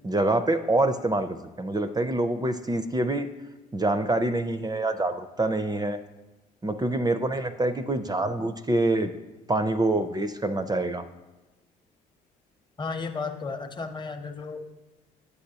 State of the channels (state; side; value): normal; both; correlation 0.69